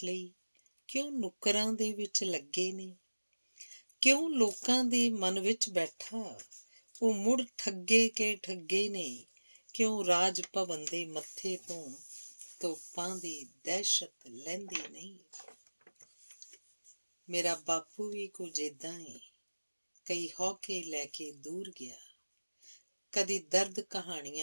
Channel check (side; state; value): both; inverted; correlation -1.00